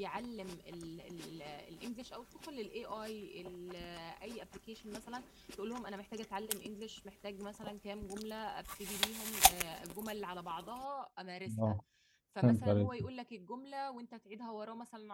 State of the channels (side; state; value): both; identical; correlation 1.00